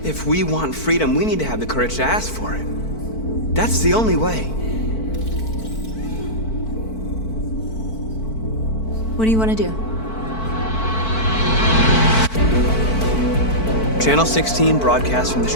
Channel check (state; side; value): late; right; 4.5 ms